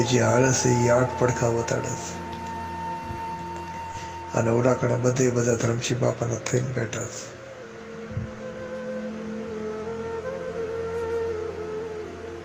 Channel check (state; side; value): identical; both; correlation 1.00